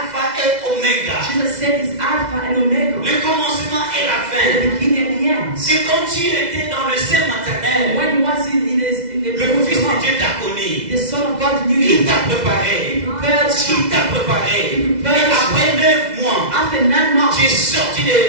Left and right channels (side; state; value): left; late; 2.0 ms